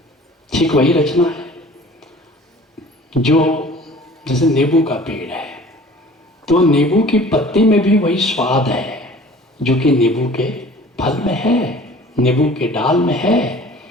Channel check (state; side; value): normal; both; correlation 0.47